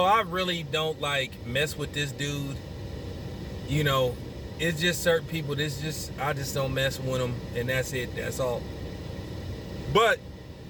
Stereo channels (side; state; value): both; identical; correlation 1.00